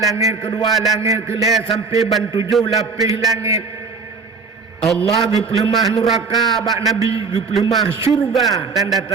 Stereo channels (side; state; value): left; quieter; 4.9 dB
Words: kedua langit kelih sampai ban 7 lapis langit Allah gepelemah neraka bak Nabi gepelemah syurga